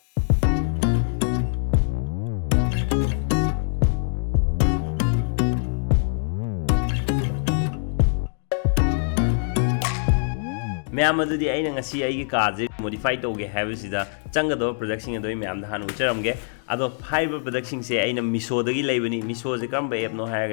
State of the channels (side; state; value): right; silent; digital silence